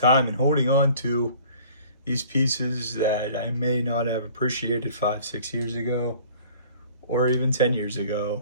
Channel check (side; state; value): both; inverted; correlation -0.50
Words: and holding on to these pieces that I may not have appreciated 5-6 years ago, or even 10 years ago,